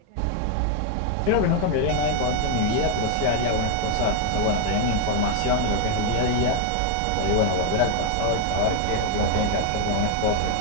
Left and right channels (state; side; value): different; both; correlation 0.00